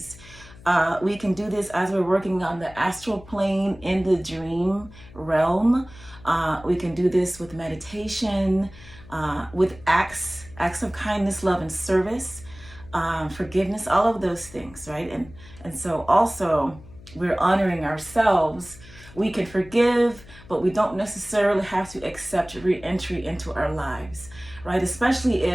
We can do this as we're working on the astral plane in the dream realm. We can do this with meditation, with acts of kindness, love, and service, forgiveness, all of those things, right? And so also we're honoring ourselves. We can forgive, but we don't necessarily have to accept re-entry into our lives, right? Especially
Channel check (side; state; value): left; noise; hum, 20 dB below the sound